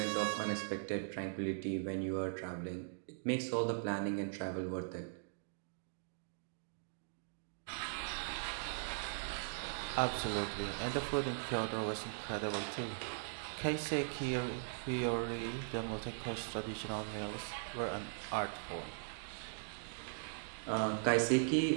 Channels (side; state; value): left; silent; digital silence